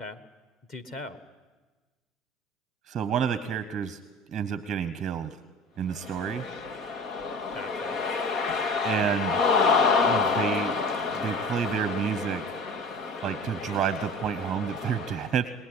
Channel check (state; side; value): normal; both; correlation 0.39